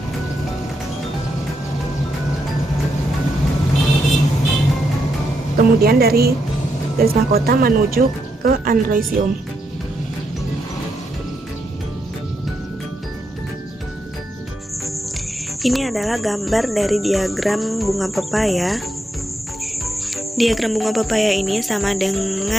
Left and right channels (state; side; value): normal; both; correlation 0.81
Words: kemudian dari garis mahkota menuju ke androisium. Ini adalah gambar dari diagram bunga pepaya. Diagram bunga pepaya ini sama